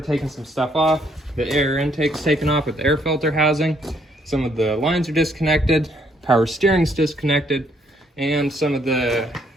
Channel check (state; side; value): normal; both; correlation 0.69